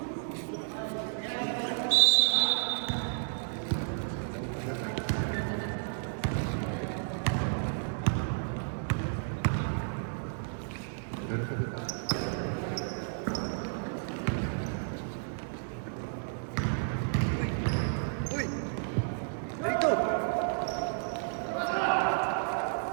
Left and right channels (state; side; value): silent; left; digital silence